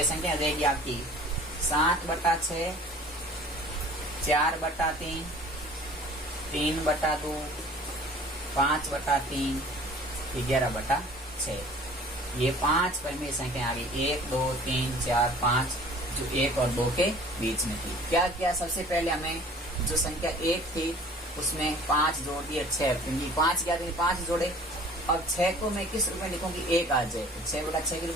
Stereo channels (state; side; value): normal; both; correlation 0.48